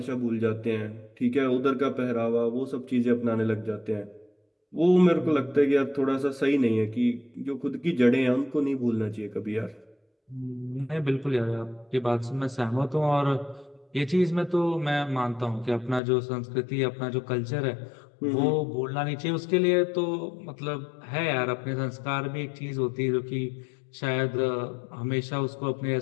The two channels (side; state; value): right; drops out; at 16.0 s